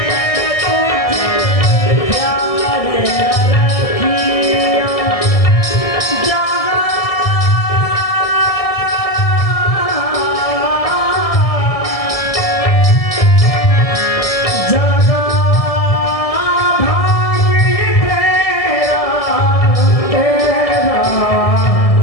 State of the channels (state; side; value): late; right; 1.7 ms